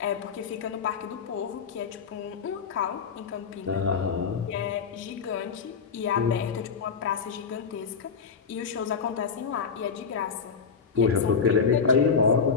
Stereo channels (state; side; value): quieter; right; 5.8 dB